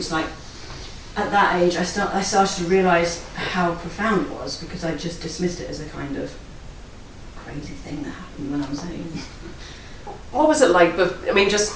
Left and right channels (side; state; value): both; identical; correlation 1.00